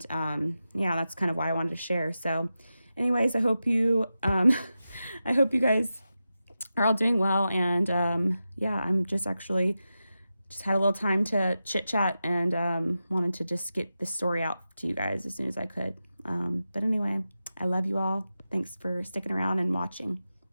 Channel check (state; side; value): inverted; both; correlation -0.92